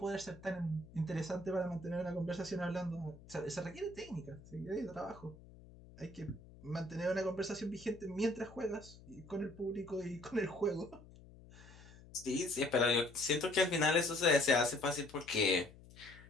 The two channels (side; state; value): left; noise; hum, 20 dB below the sound